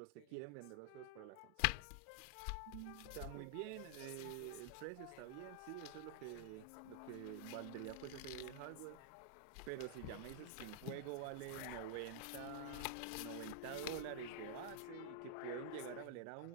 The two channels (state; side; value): different; both; correlation -0.01